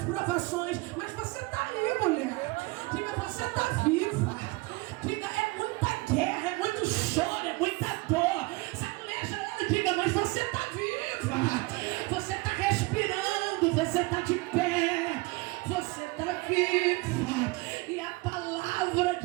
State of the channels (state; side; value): quieter; left; 24.0 dB